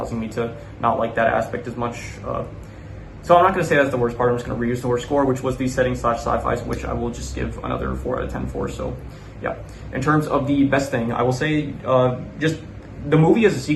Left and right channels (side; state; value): both; identical; correlation 1.00